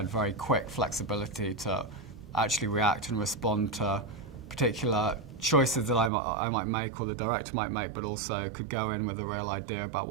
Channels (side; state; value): left; drops out; at 6.1 s